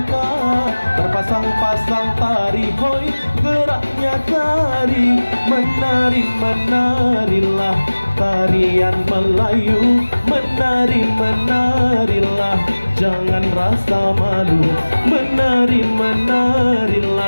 terpasang-pasang tari hoi geraknya tari. Menari menarilah tarian Melayu, menari menarilah jangan rasa malu. Menari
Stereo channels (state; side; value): inverted; both; correlation -1.00